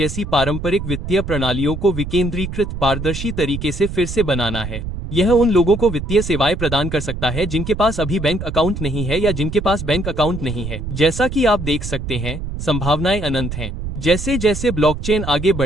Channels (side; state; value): right; noise; rumble, 7 dB below the sound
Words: पारंपरिक वित्तीय प्रणालियों को विकेंद्रीकृत, पारदर्शी तरीके से फिर से बनाना है। यह उन लोगों को वित्तीय सेवाएं प्रदान कर सकता है जिनके पास अभी बैंक अकाउंट नहीं है या जिनके पास बैंक अकाउंट नहीं है। जैसा कि आप देख सकते हैं, संभावनाएं अनंत हैं। जैसे जैसे ब्लॉकचेन आगे